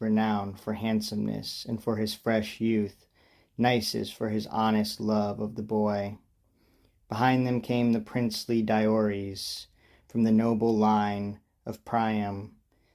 renowned for handsomeness and for his fresh youth, Nisus for his honest love of the boy. Behind them came the princely Diores, from the noble line of Priam.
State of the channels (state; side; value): identical; both; correlation 1.00